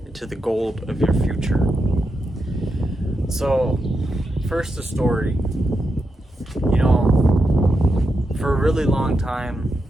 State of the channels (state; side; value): normal; both; correlation 0.86